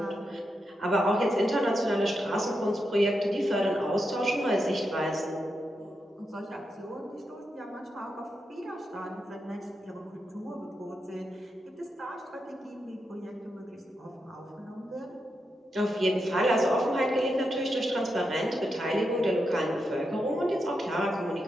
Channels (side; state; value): both; normal; correlation 0.85